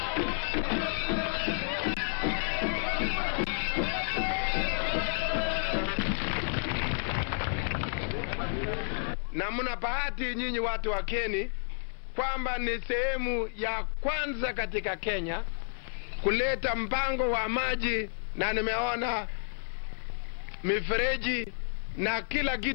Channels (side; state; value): right; silent; digital silence